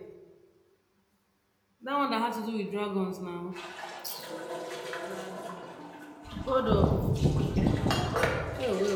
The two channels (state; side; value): identical; both; correlation 1.00